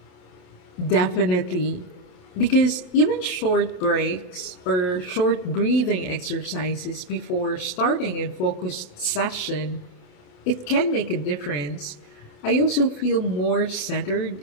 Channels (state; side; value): late; right; 28 ms